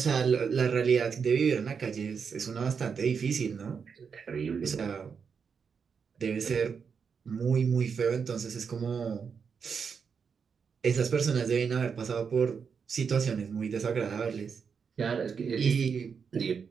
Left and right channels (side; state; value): left; quieter; 6.2 dB